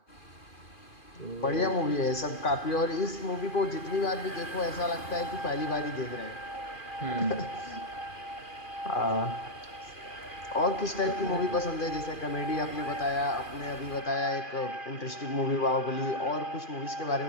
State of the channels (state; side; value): late; right; 2.5 ms